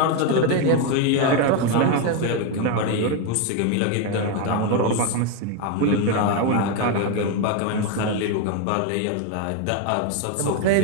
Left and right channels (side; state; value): both; different; correlation 0.02